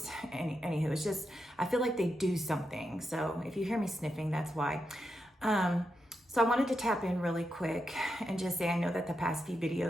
it's just, I feel like they do something. So if you hear me sniffing, that's why. So I wanted to tap in really quick and just say, I know that the past few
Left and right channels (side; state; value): both; normal; correlation 0.86